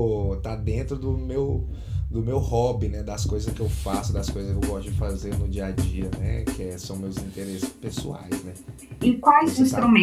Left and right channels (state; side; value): identical; both; correlation 1.00